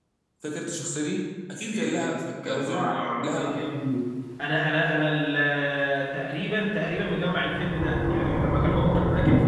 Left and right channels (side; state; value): both; identical; correlation 1.00